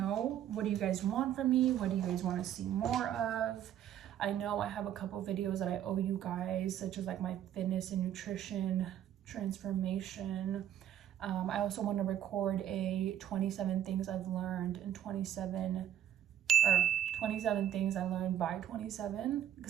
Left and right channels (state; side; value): quieter; left; 10.6 dB